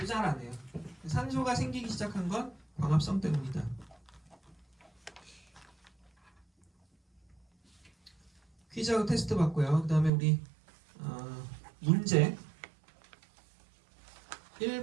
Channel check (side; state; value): left; drops out; at 10.1 s